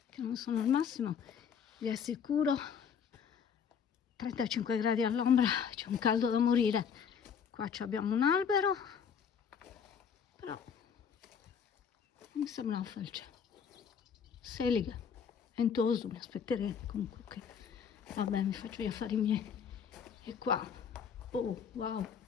che non sono al massimo, vi assicuro. 35 gradi all'ombra, c'è un caldo da morire. Qua abbiamo un albero, però mi sembra una felce. Seliga, Ventoso, mi aspetteremo comunque che... Vabbè, mi faccio gli affari miei. E qua, oh wow,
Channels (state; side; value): quieter; right; 7.1 dB